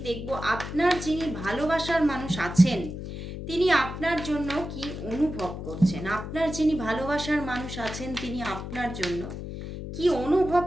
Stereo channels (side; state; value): left; noise; hum, 8 dB below the sound